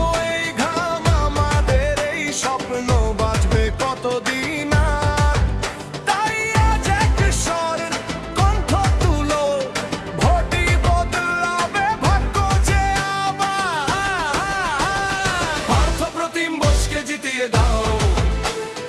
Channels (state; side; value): identical; both; correlation 1.00